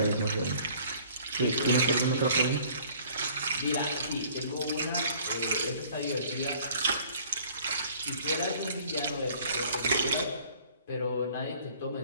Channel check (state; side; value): inverted; both; correlation -0.53